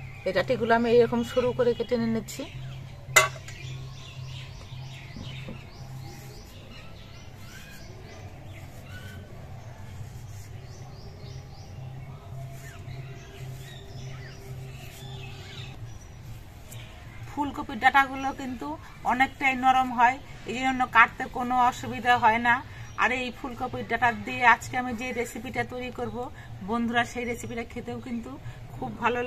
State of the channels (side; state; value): both; identical; correlation 1.00